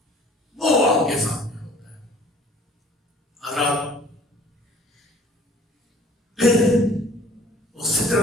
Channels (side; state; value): both; normal; correlation 0.52